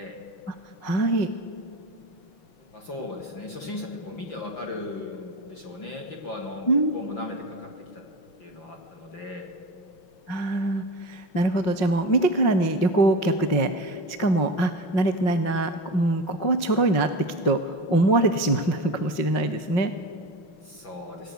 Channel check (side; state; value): right; late; 5.5 ms